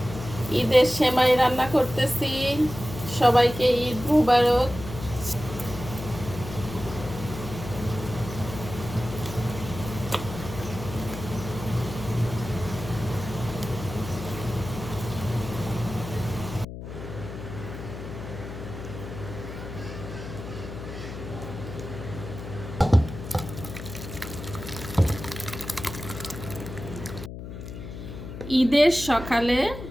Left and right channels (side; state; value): left; noise; hum, 10 dB below the sound